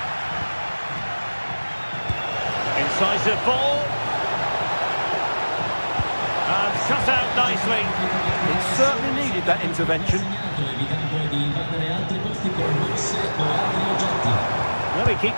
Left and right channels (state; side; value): inverted; both; correlation -1.00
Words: Incisive ball. And shut out nicely. It certainly needed that intervention. Well, he